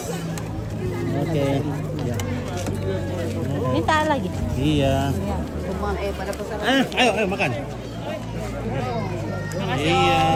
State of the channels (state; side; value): identical; both; correlation 1.00